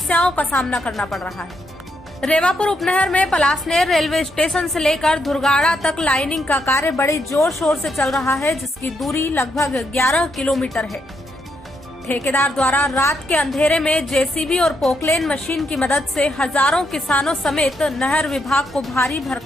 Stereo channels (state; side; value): normal; both; correlation 0.78